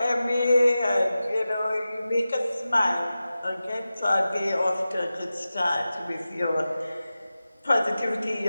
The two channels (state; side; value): inverted; both; correlation -0.94